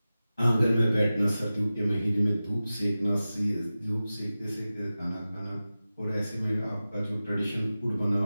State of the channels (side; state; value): both; inverted; correlation -0.95